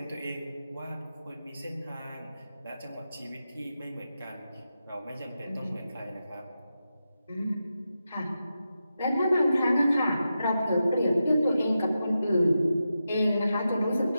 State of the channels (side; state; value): both; inverted; correlation -0.89